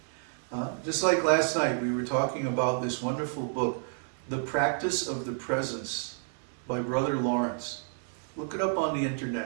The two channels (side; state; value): left; silent; 58 dB below the other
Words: Just like last night, we were talking about this wonderful book, The Practice of the Presence by Brother Lawrence. Look it up on the